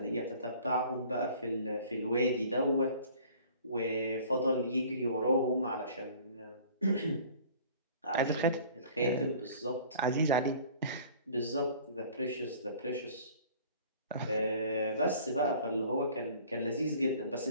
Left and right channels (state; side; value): inverted; both; correlation -0.49